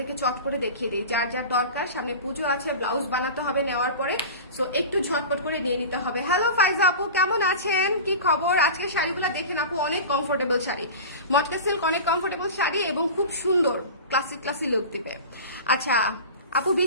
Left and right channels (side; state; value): both; inverted; correlation -0.33